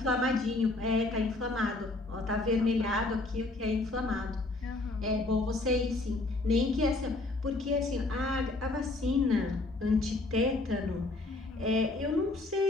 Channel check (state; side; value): quieter; right; 3.0 dB